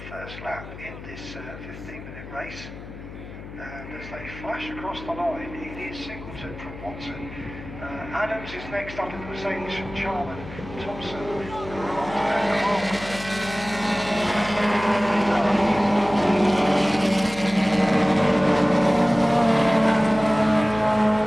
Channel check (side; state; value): left; noise; hum, 13 dB below the sound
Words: first lap in this 15-minute race. And as they flash across the line, it is Singleton from Watson. Adams is next up in the Mercedes from Charman, Thompson, Grant and Harper.